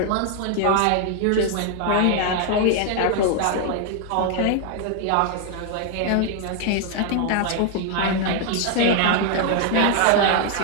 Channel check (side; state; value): both; different; correlation 0.00